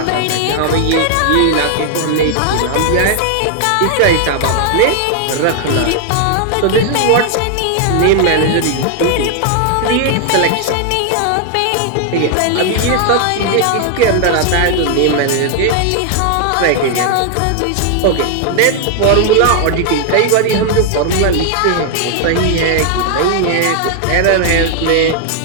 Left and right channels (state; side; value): different; both; correlation 0.00